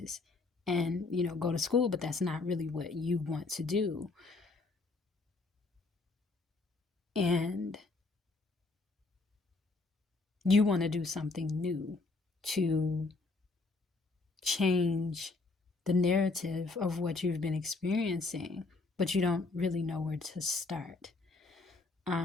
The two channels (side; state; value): right; quieter; 3.6 dB